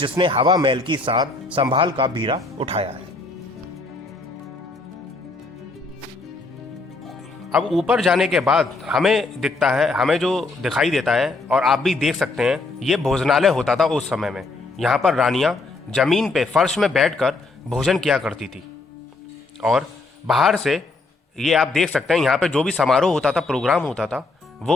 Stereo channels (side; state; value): right; quieter; 3.5 dB